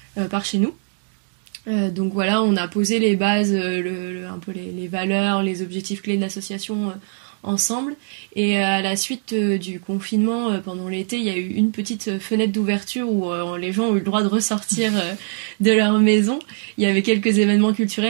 par chez nous. Donc voilà, on a posé les bases, un peu les valeurs, les objectifs clés de l'association ensemble. Et à la suite du confinement, pendant l'été, il y a eu une petite fenêtre d'ouverture où les gens ont eu le droit de ressortir de leur maison. Il y avait quelques événements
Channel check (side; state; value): left; silent; 57 dB below the other